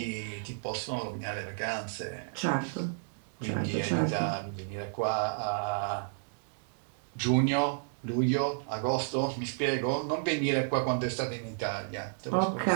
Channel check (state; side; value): silent; left; digital silence